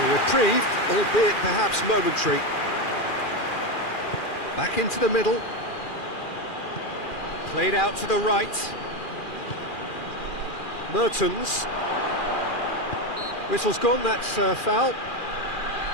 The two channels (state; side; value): late; right; 2.4 ms